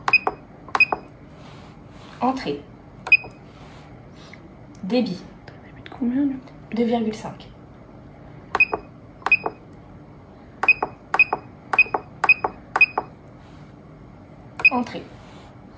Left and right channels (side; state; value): both; identical; correlation 1.00